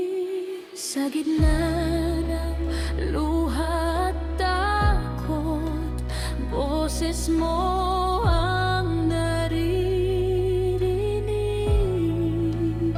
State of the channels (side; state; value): both; identical; correlation 1.00